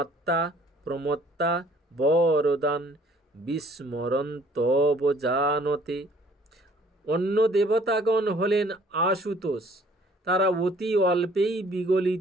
প্রমত্তা বরদান বিস্মরন্তব জানতে। অন্য দেবতাগণ হলেন আশুতোষ। তারা অতি অল্পেই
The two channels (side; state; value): both; normal; correlation 0.57